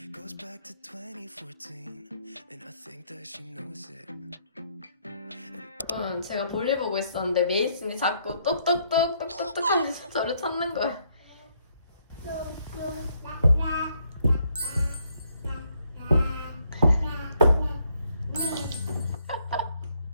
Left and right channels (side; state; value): both; inverted; correlation -0.71